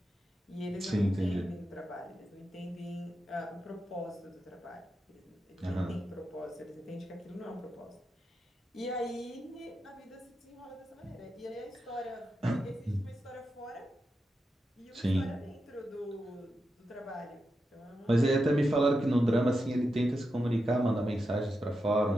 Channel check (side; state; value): both; normal; correlation 0.87